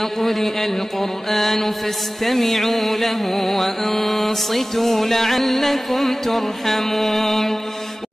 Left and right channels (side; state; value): both; normal; correlation 0.97